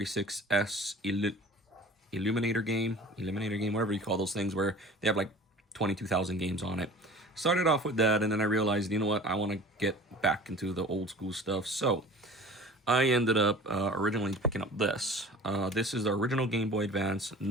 Eliminator game, whatever you call those things, where they have like 22,000 games on it. Started off with that, and then I realized, you know what, I want to get back into the old school stuff. So I ended up originally picking up this. This is the original Game Boy Advance,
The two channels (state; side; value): normal; both; correlation 0.42